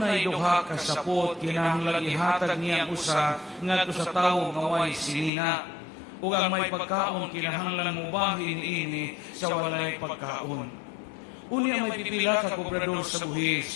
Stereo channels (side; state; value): right; drops out; at 5.3 s